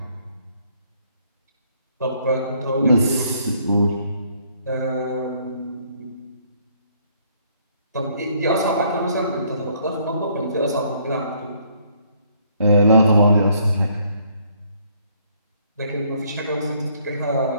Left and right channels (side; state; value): both; inverted; correlation -0.65